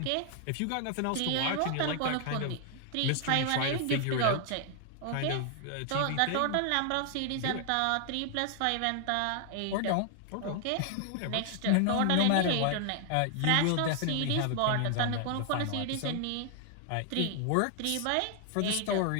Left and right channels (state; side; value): different; both; correlation 0.00